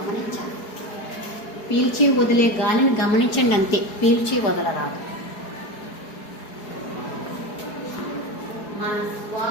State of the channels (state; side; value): late; right; 4.7 ms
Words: పీల్చి వదిలే గాలిని గమనించండి, అంతే. పీల్చి వదలరాదు. మన